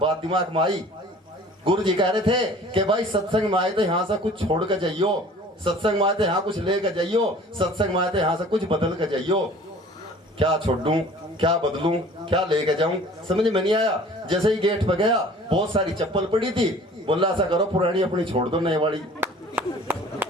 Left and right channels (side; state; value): both; normal; correlation 0.48